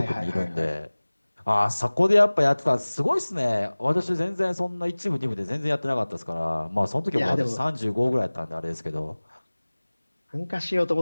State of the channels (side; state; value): both; inverted; correlation -1.00